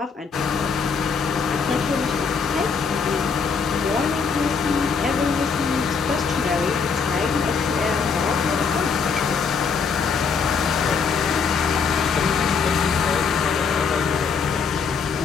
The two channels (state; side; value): quieter; right; 5.6 dB